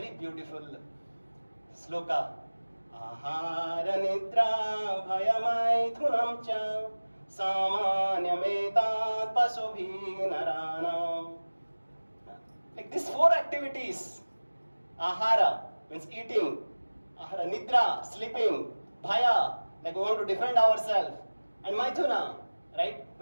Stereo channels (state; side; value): inverted; both; correlation -1.00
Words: beautiful sloka. Ahara nidra bhayamaithunam cha samanyametat pasubhi naranam. Like these four activities, ahara means eating, ahara nidra, sleeping, bhaya, like we want to defend ourselves, and maithuna, right,